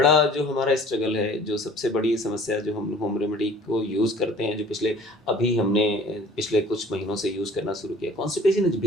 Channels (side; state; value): both; normal; correlation 0.49